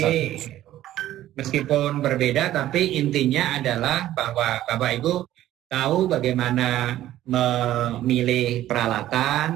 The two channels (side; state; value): left; quieter; 13.6 dB